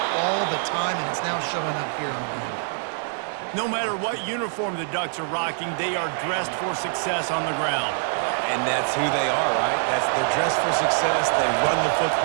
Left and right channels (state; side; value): silent; left; 62 dB below the other